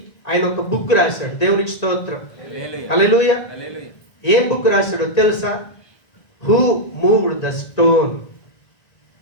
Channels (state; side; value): late; right; 1.8 ms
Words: ఆయన ఒక బుక్ రాశాడు. దేవునికి స్తోత్రం, హల్లెలూయా. ఏం బుక్ రాశాడో తెలుసా? Who moved the stone,